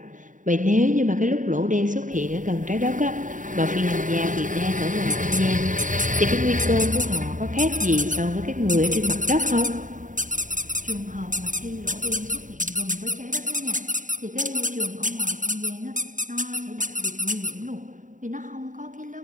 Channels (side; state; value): left; late; 0.37 ms